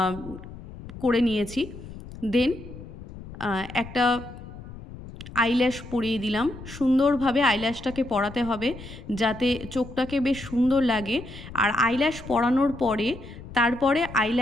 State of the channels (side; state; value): left; noise; rumble, 14 dB below the sound